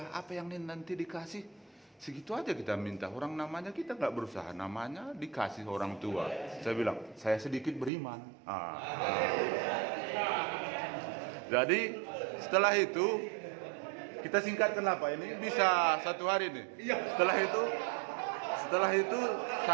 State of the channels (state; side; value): drops out; left; at 7.9 s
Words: apa yang nanti dikasih segitu aja kita minta. Orang namanya kita nggak berusaha, namanya dikasih orang tua. Saya bilang, saya sedikit beriman. Jadi setelah itu kita singkatkan apa ini bisa 1 hari nih. Setelah itu